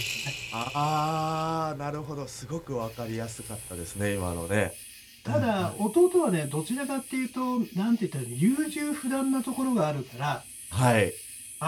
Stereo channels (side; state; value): both; identical; correlation 1.00